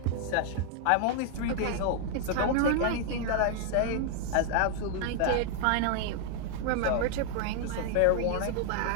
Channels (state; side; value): different; both; correlation 0.00